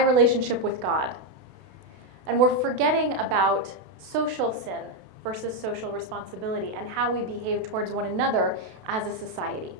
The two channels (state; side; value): late; left; 32 ms